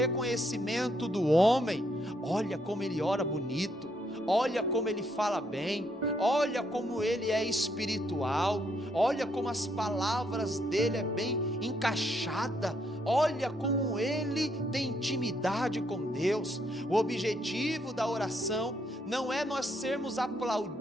do homem. Olha como ele ora bonito, olha como ele fala bem, olha como ele é espiritual, olha como as palavras dele é bem encaixada, olha como ele tem intimidade com Deus. O objetivo da oração não é nós sermos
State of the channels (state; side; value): normal; both; correlation 0.74